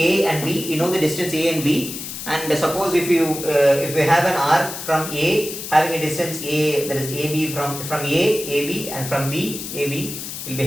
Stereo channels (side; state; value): left; noise; hiss, 8 dB below the sound